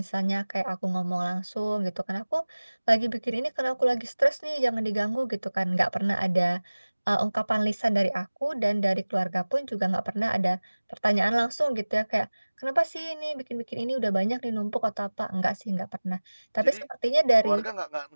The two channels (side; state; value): both; inverted; correlation -1.00